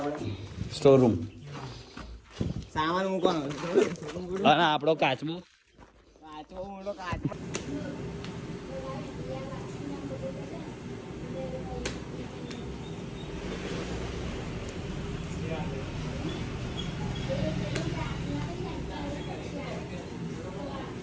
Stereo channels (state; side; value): identical; both; correlation 1.00